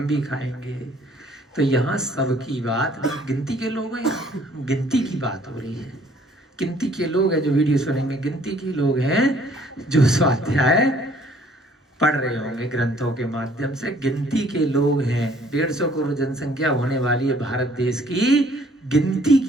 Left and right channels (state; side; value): normal; both; correlation 0.59